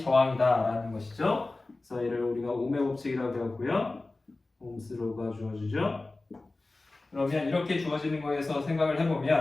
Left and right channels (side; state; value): right; quieter; 3.2 dB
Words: 라는 것이죠. 그래서 얘를 우리가 옥매 법칙이라고 배웠고요. 옴스로가 주어지죠. 그러면 이렇게 주어지는 거에서 생각을